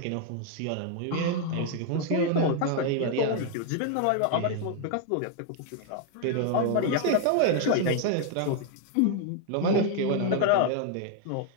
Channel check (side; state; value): both; different; correlation 0.00